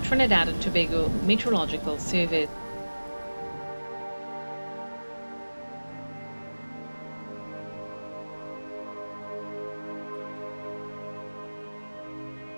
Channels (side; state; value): both; inverted; correlation -1.00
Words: and Tobago Meteorological Service.